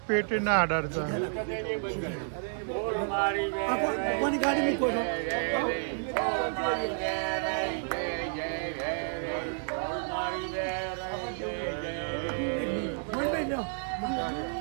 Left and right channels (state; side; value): silent; left; digital silence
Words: पेट ना डरता कोनी गाड़ी में कोई